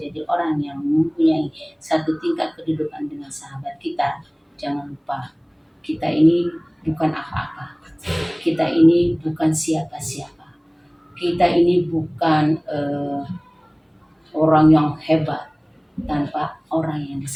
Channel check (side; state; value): both; identical; correlation 1.00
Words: orang yang mempunyai satu tingkat kedudukan dengan sahabat kita, jangan lupa kita ini bukan apa-apa. Kita ini bukan siapa-siapa. Kita ini bukan orang yang hebat tanpa orang yang di